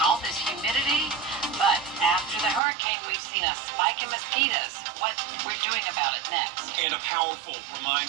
all this humidity. But after the hurricane, we've seen a spike in mosquitoes. What we're doing about it next. And a powerful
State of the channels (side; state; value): left; drops out; at 2.6 s